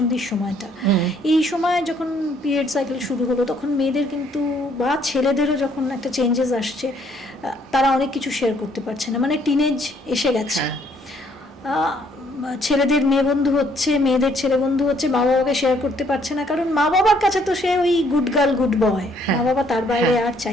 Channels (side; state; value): both; normal; correlation 0.66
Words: সময়টা, এই সময় যখন পিরিয়ড সাইকেল শুরু হলো, তখন মেয়েদের কিন্তু বা ছেলেদেরও যখন একটা চেঞ্জেস আসছে, তারা অনেক কিছু শেয়ার করতে পারছে না, মানে টিনেজ এসে গেছে। ছেলেদের মেয়ে বন্ধু হচ্ছে, মেয়েদের ছেলে বন্ধু হচ্ছে, মা বাবাকে শেয়ার করতে পারছে না, কারণ মা বাবার কাছে তো সে ওই গুড গার্ল গুড বয়, মা বাবা তার বাইরে আর